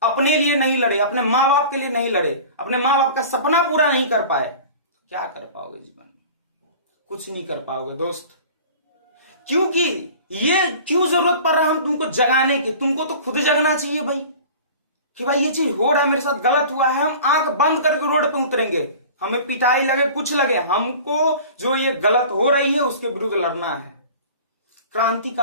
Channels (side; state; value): both; inverted; correlation -0.41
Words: अपने लिए नहीं लड़े, अपने माँ बाप के लिए नहीं लड़े, अपने माँ बाप का सपना पूरा नहीं कर पाए। क्या कर पाओगे जीवन में? कुछ नहीं कर पाओगे दोस्त। क्योंकि ये क्यों जरूरत पड़ रहा है हम तुमको जगाने की? तुमको तो खुद जगना चाहिए भाई कि भाई ये चीज हो रहा है, मेरे साथ गलत हुआ है। हम आंख बंद करके रोड पे उतरेंगे, हमें पिटाई लगे कुछ लगे, हमको जो ये गलत हो रही है उसके विरुद्ध लड़ना है।